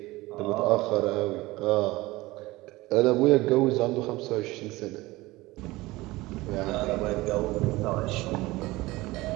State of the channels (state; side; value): quieter; left; 20.0 dB